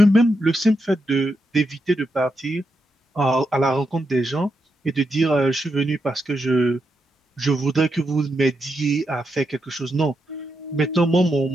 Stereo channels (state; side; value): normal; both; correlation 0.84